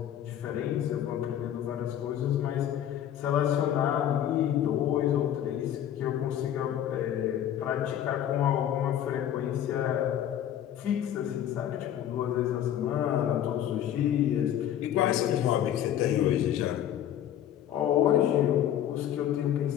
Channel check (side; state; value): right; quieter; 10.8 dB